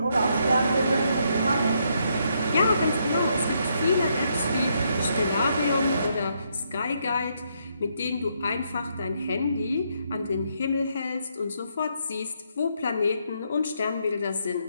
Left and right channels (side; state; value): both; inverted; correlation -0.75